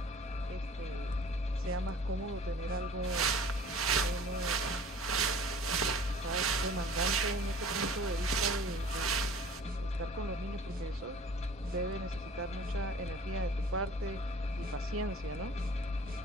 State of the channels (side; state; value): both; normal; correlation 0.47